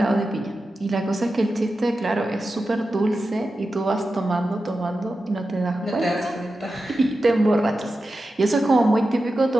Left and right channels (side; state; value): both; normal; correlation 0.92